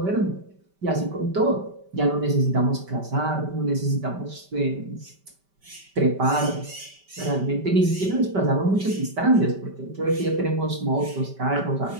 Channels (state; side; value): late; left; 5.1 ms